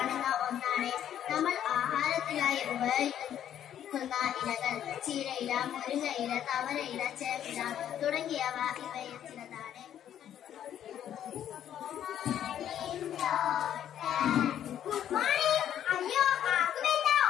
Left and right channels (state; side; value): quieter; right; 10.4 dB